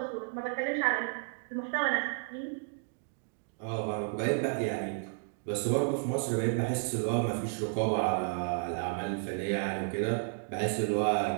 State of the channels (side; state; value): left; silent; digital silence